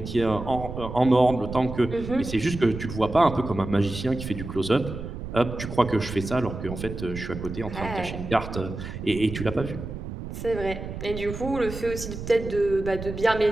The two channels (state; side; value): noise; right; rumble, 8 dB below the sound